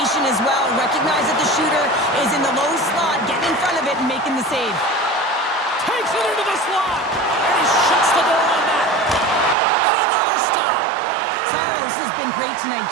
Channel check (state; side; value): drops out; left; at 9.6 s